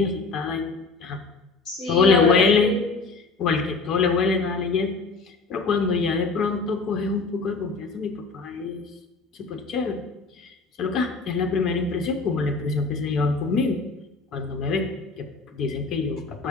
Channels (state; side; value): quieter; right; 4.0 dB